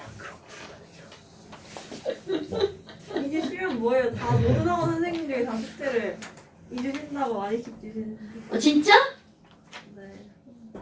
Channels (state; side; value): identical; both; correlation 1.00